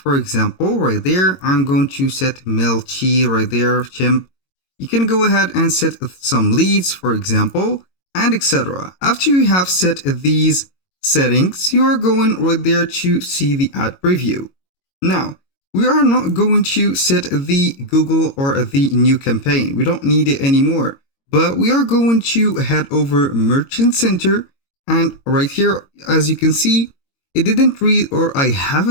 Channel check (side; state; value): right; late; 22 ms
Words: example, right there, I'm going to set Melchi right there, chimp. You can go ahead and set some leads, for example, and etc. After you have set these settings, you are going right there to see the ad preview. Now, we are not going to set the Google or the new campaign. We don't need it anymore, but we are going to head over Merchant Center. And right here, as you can see, it didn't read or I